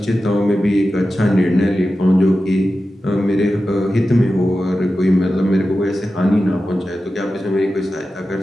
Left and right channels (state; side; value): normal; both; correlation 0.93